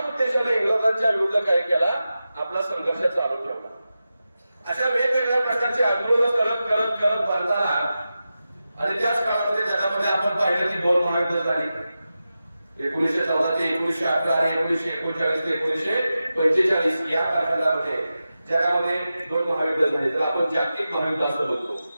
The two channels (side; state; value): both; inverted; correlation -0.92